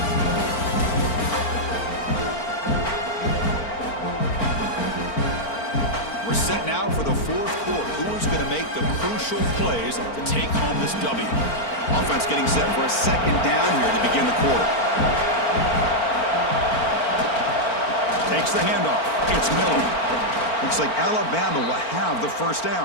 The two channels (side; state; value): right; late; 4.4 ms